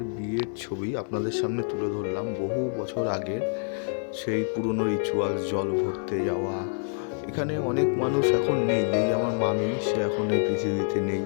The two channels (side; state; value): right; silent; 60 dB below the other